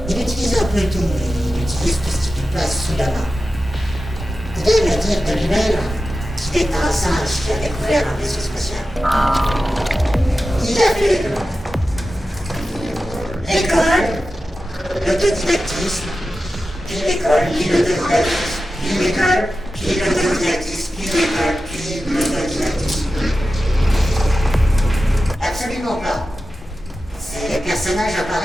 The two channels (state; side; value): normal; both; correlation 0.93